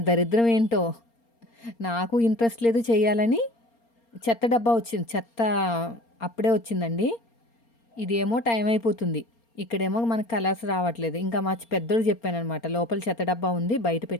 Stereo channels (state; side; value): late; right; 4.3 ms